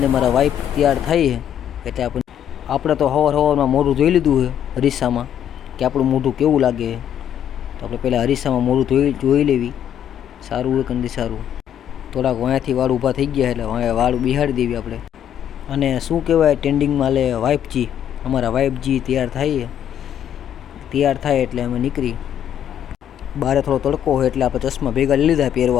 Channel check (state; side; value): quieter; right; 9.9 dB